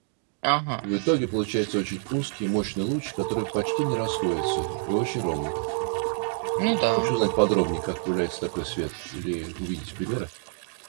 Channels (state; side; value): silent; left; 60 dB below the other